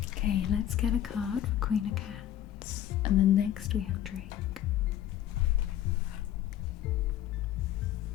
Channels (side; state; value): right; quieter; 11.6 dB